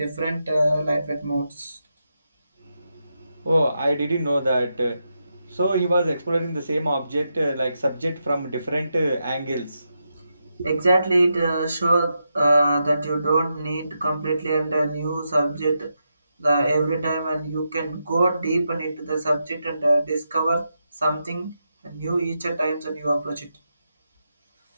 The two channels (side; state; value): both; inverted; correlation -0.85